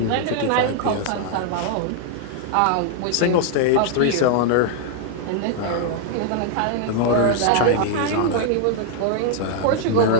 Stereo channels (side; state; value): both; different; correlation 0.00